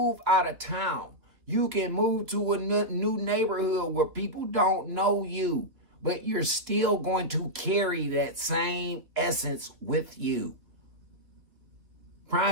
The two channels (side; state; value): left; late; 2.8 ms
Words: out of town. You can move to a new neighborhood where people don't know you, but you're still going to carry that same essence with you.